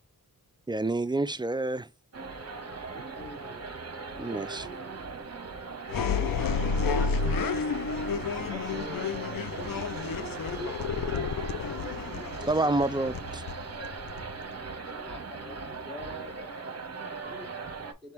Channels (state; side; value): normal; both; correlation 0.31